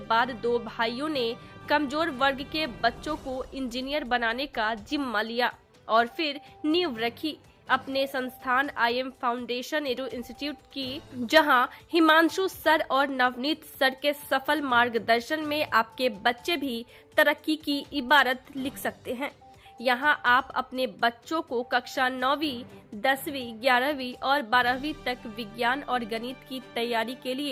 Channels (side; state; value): both; identical; correlation 1.00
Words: बाद दो भाइयों ने कमजोर वर्ग के बच्चों को इंजीनियर बनाने का जिम्मा लिया और फिर नींव रखी अपने संस्थान IM फाउंडेशन एडू इंस्टीट्यूट की, जहां हिमांशु सर और नवनीत सर के सफल मार्गदर्शन में आपके बच्चे भी तरक्की की इबारत लिख सकते हैं। यहां आप अपने बच्चों को कक्षा 9वीं, 10वीं, 11वीं और 12वीं तक विज्ञान और गणित की तैयारी के